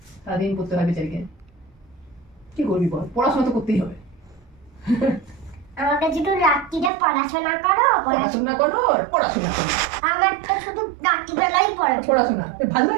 সারাদিন করতে হয় বেচারিকে। কি করবি বল, পড়াশোনা তো করতেই হবে। আমাকে শুধু রাত্রিরে পড়াশোনা করো, পড়াশোনা করো, পড়াশোনা করো। আমার তো শুধু রাত্রিবেলাই পড়াশোনা ভালো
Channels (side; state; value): left; drops out; at 6.9 s